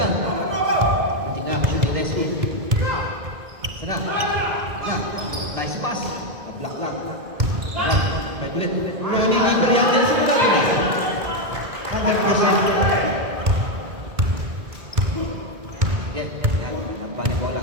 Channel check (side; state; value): left; late; 2.1 ms